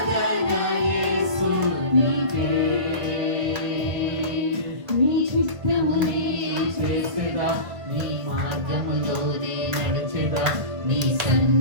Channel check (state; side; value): late; left; 1.9 ms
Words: యేసునికే. నీ చిత్తమునే చేసేదా, నీ మార్గములోనే నడిచెదా, నీ